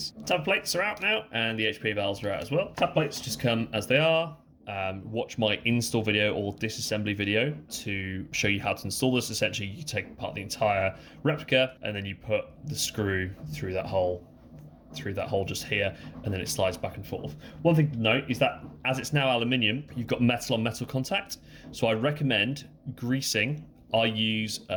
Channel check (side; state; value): both; identical; correlation 1.00